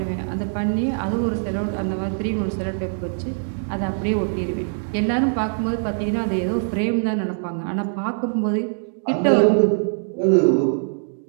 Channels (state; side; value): silent; left; digital silence